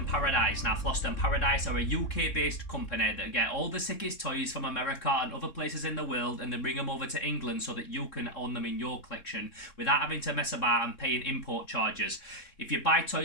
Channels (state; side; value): late; right; 3.7 ms